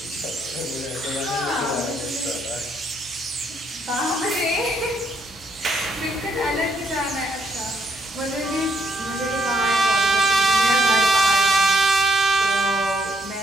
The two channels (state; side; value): normal; both; correlation 0.71